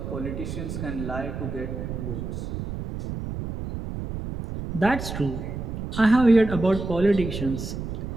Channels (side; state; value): right; noise; rumble, 6 dB below the sound